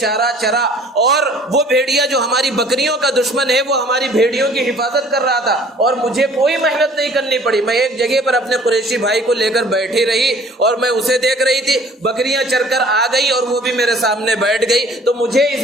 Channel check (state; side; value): normal; both; correlation 0.53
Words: چرا، اور وہ بھیڑیا جو ہماری بکریوں کا دشمن ہے وہ ہماری بھیڑیوں کی حفاظت کر رہا تھا، اور مجھے کوئی محنت نہیں کرنی پڑی، میں ایک جگہ پر اپنے قریشی بھائی کو لے کر بیٹھی رہی اور میں اسے دیکھ رہی تھی، بکریاں چر کر آ گئی اور وہ بھی میرے سامنے بیٹھ گئی، تو مجھے